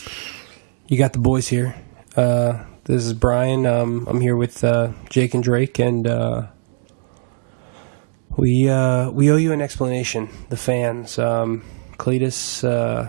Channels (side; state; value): left; silent; digital silence